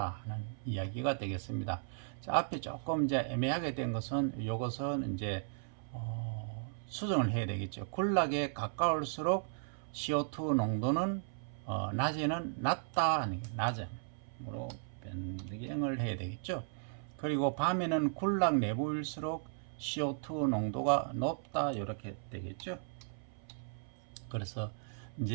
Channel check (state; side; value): silent; left; 54 dB below the other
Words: 이야기가 되겠습니다. 자, 앞에 조금 이제 애매하게 된 것은 이것은 이제 수정을 해야 되겠죠. 군락에 가까울수록 CO2 농도는 낮에는 낮다, 낮음으로 변경을 해야 되겠죠. 그리고 밤에는 군락 내부일수록 CO2 농도가 높다 이렇게 되겠죠. 그래서